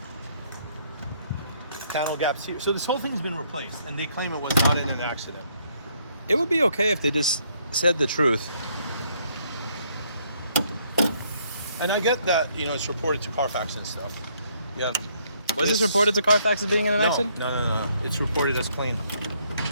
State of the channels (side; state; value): both; inverted; correlation -0.69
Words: Panel gaps here. So this whole thing's been replaced, and they claim it was not in an accident. It would be okay if they just said the truth. And I get that it's reported to Carfax and stuff. Yeah. Was this reported to Carfax as being in an No, accident? no. It's reported as clean.